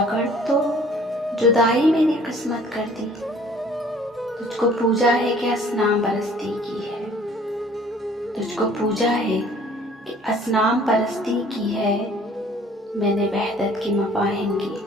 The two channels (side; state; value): both; normal; correlation 0.54